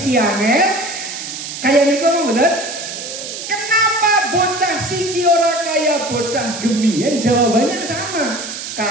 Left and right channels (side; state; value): right; noise; hiss, 8 dB below the sound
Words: angel kaya niku mboten? Kenapa bocah siki ora kaya bocah gemien? Jawabannya sama.